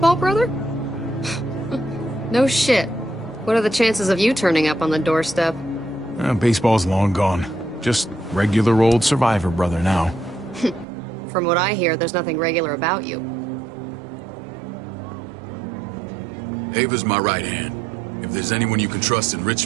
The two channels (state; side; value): drops out; left; at 10.9 s